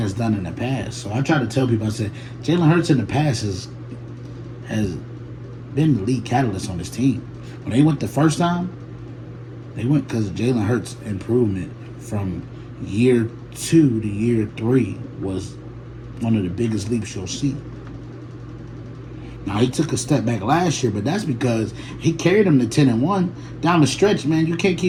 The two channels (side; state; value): both; identical; correlation 1.00